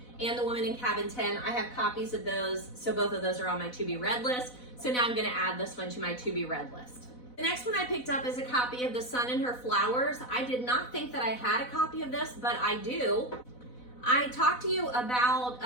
and The Woman in Cabin 10, I have copies of those, so both of those are on my to be read list. So now I'm going to add this one to my to be read list. The next one I picked up is a copy of The Sun and Her Flowers. I did not think that I had a copy of this, but I do. I talked to you about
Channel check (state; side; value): late; right; 4.0 ms